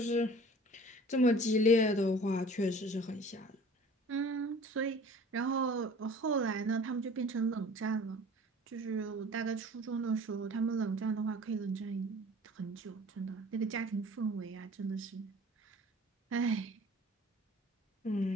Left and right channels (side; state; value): both; normal; correlation 0.46